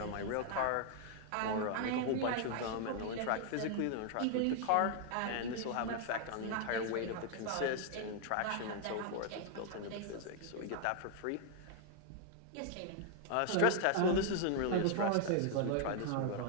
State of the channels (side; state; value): both; different; correlation 0.00